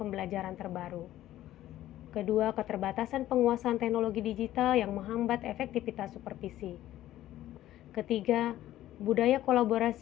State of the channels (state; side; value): quieter; right; 13.8 dB